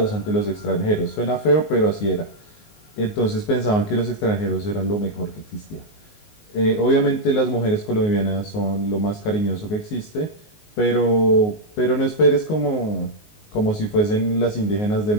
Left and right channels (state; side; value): late; right; 19 ms